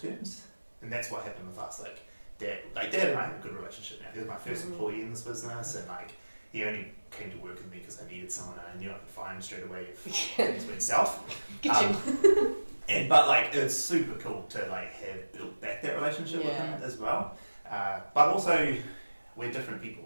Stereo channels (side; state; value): both; inverted; correlation -1.00